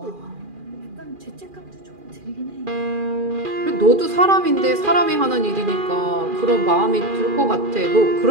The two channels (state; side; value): late; left; 2.4 ms